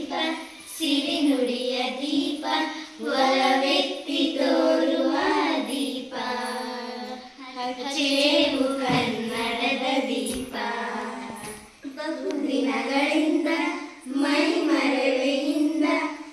ಸಿರಿನುಡಿಯ ದೀಪ, ಒಲವೆತ್ತಿ ತೋರುವ ದೀಪ. ಹಚ್ಚೇವು ಕನ್ನಡದ ದೀಪ, ಬಹುದಿನಗಳಿಂದ ಮೈ ಮರೆವೆಯಿಂದ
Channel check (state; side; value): identical; both; correlation 1.00